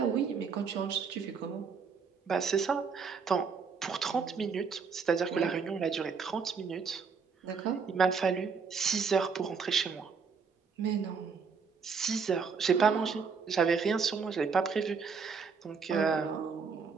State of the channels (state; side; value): quieter; left; 5.6 dB